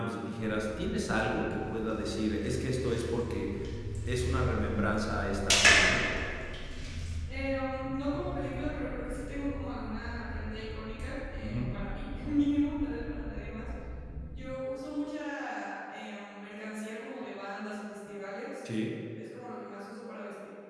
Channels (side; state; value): both; identical; correlation 1.00